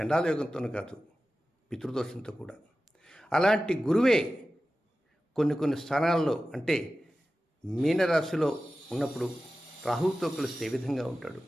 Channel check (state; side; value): normal; both; correlation 0.95